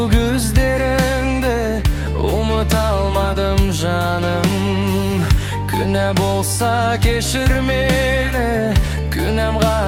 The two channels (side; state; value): both; identical; correlation 1.00